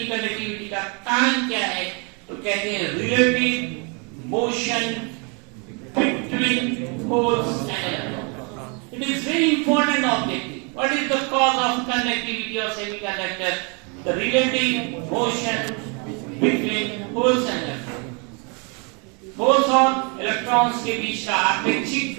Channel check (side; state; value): left; quieter; 34.0 dB